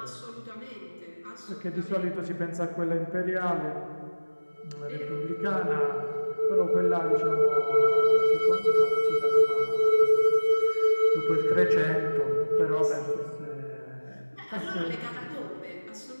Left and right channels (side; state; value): both; inverted; correlation -1.00